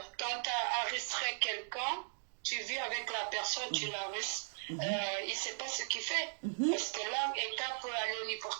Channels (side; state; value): left; silent; digital silence